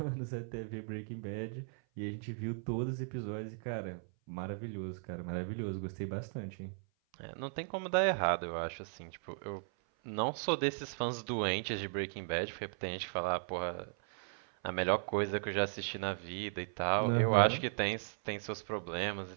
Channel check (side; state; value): left; silent; 53 dB below the other